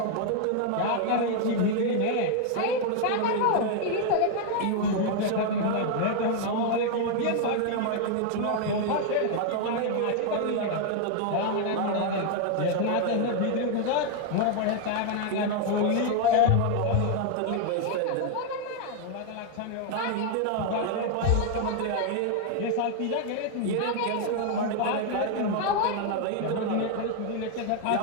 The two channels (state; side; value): different; both; correlation 0.00